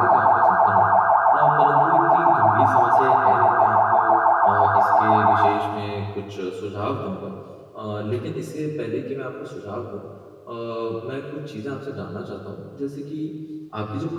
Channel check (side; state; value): both; identical; correlation 1.00